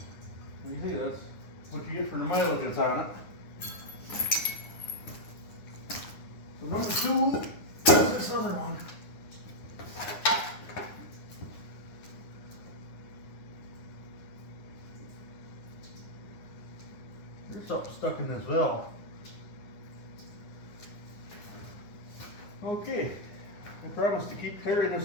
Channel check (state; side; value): late; right; 9.8 ms